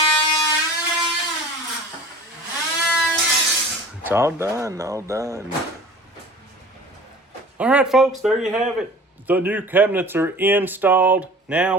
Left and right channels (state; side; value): normal; both; correlation 0.42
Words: It's all done, all done. All right, folks, there you have it. The new cabinets are installed. Now